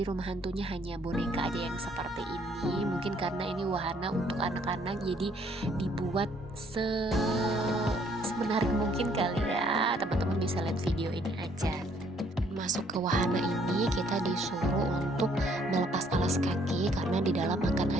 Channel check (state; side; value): normal; both; correlation 0.64